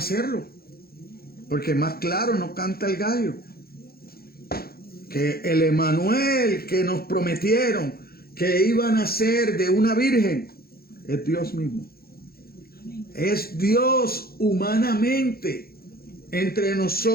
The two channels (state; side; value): late; right; 0.44 ms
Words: Porque más claro no canta el gallo. Que el Emanuel que nos prometieron que iban a ser de una virgen es Dios mismo. Es Dios humanamente entre